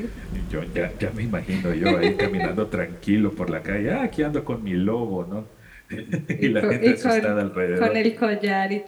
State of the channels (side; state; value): both; identical; correlation 1.00